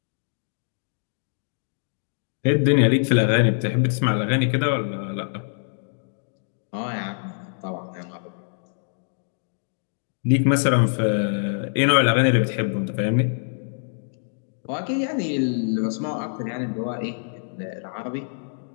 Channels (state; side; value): silent; right; digital silence